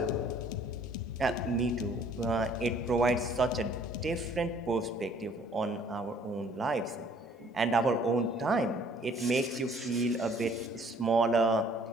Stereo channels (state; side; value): normal; both; correlation 0.58